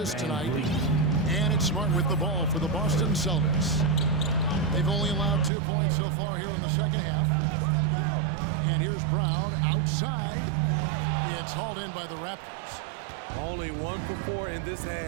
tonight. And it's Smart with the ball for the Boston Celtics. They've only allowed 2 points so far here in the second half. And here's Brown outside. It's hauled in by the Raptors. Only 1 for 4 in this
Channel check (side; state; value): left; drops out; at 5.5 s